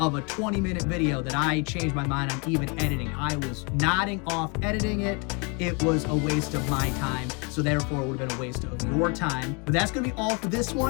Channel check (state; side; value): quieter; right; 32.9 dB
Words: a 20-minute video that I changed my mind on even editing. I was nodding off editing it. It was a waste of my time, so therefore it would have been a waste of your time. But that's going to be all for this